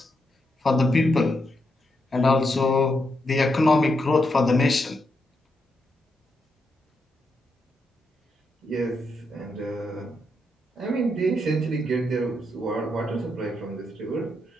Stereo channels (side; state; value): both; normal; correlation 0.82